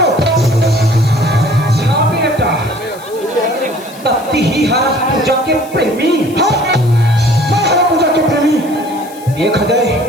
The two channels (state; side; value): noise; left; hiss, 21 dB below the sound